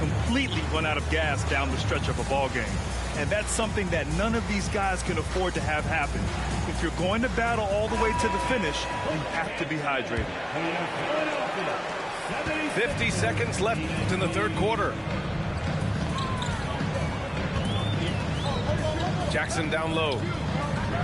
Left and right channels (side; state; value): both; identical; correlation 1.00